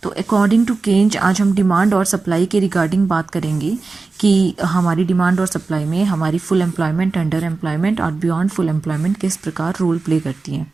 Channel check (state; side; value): quieter; left; 3.9 dB